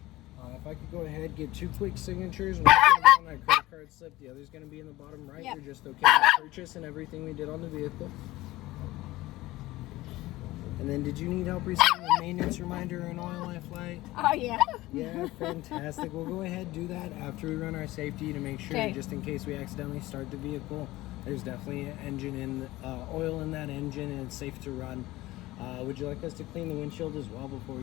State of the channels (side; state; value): right; quieter; 18.0 dB